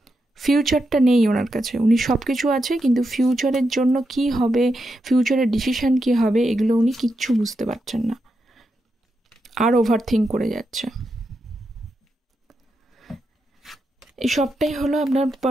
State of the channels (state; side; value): normal; both; correlation 0.85